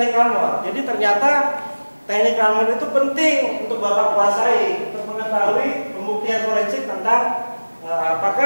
Ranmor. Jadi ternyata teknik Ranmor itu penting untuk Bapak kuasai untuk mengetahui pembuktian forensik tentang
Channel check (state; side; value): inverted; both; correlation -1.00